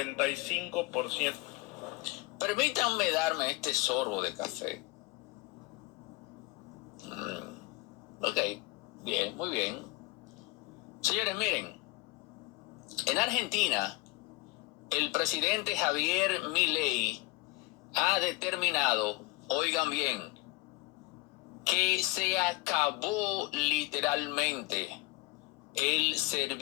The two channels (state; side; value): quieter; right; 22.4 dB